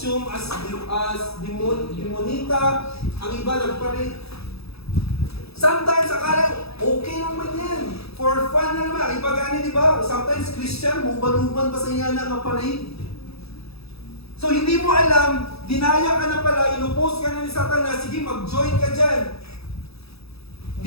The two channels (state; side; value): late; right; 0.78 ms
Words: as demonita, ang iba nag-parade. Sometimes, akala, okay naman yan. For fun na naman. Ang iba gani, di ba? Sometimes, Christian, huban-huban pa sa inyo na parade. So, hindi mo alam, dinaya ka na pala, inupost ka na ni Satanas, sige, mag-join ka dyan.